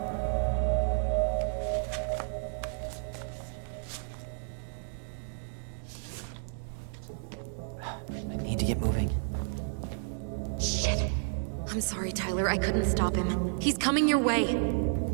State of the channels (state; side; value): silent; left; digital silence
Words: I need to get moving. Shit. I'm sorry, Tyler. I couldn't stop him. He's coming your way.